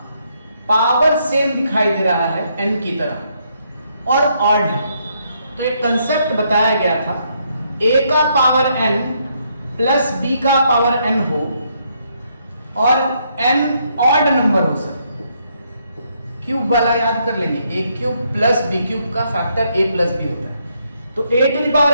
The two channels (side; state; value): both; inverted; correlation -0.74